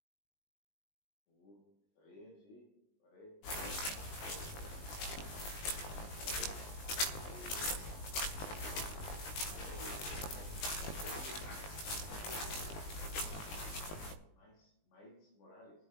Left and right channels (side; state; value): right; late; 20 ms